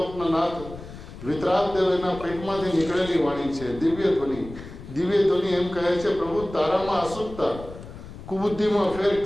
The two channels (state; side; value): noise; left; rumble, 14 dB below the sound